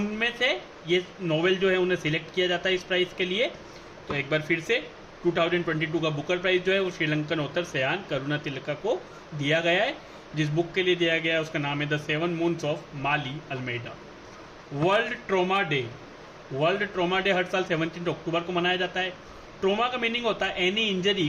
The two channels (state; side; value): identical; both; correlation 1.00